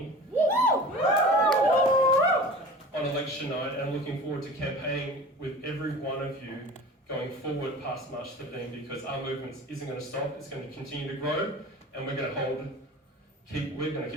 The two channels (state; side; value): normal; both; correlation 0.38